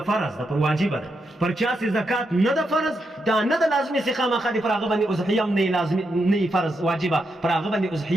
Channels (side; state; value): both; normal; correlation 0.83